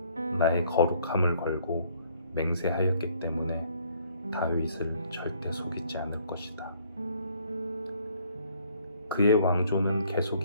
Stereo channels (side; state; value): both; inverted; correlation -0.62